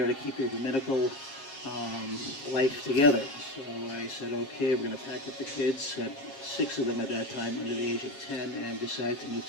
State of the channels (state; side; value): late; right; 7.4 ms